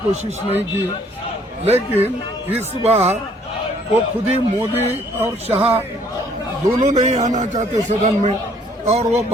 कोशिश नहीं की, लेकिन इस बार वो खुद ही मोदी और शाह दोनों नहीं आना चाहते सदन में, और वो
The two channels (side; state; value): both; normal; correlation 0.62